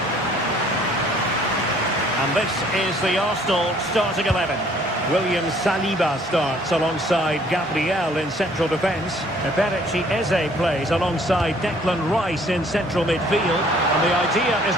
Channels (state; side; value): normal; both; correlation 0.59